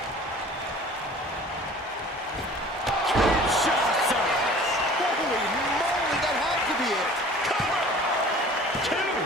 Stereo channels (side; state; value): both; normal; correlation 0.46